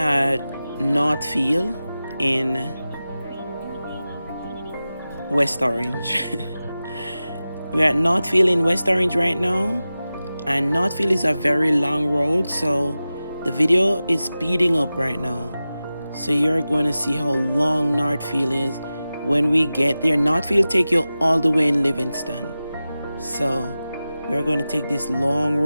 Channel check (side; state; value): both; inverted; correlation -0.95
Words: Northfield in West Orange. We're at Northfield in West Orange right now, and Northfield is a very long road, so the video is speeding up right now. So you're going to see how long Northfield is when we get there. Northfield take you all the way in Livingston. So we're going to take this long